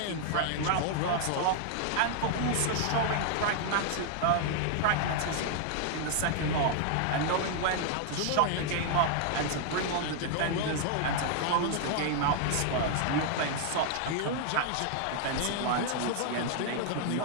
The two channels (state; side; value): different; both; correlation 0.00